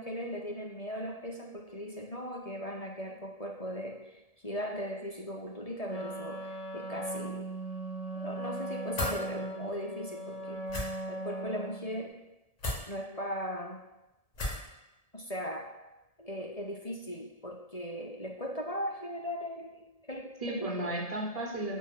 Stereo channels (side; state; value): right; late; 1.7 ms